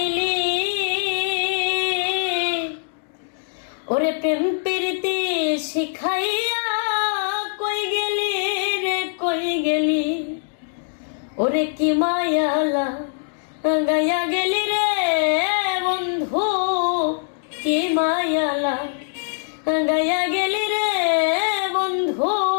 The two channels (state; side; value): silent; right; digital silence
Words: ওরে প্রেম প্রীতি শিখাইয়া কই গেলি রে কই গেলি, ওরে কি মায়ালা গায়া গেলি রে বন্ধু, কি মায়ালা গায়া গেলি রে বন্ধু।